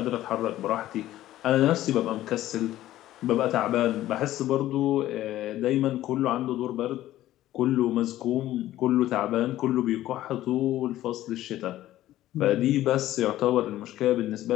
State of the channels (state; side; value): quieter; right; 14.2 dB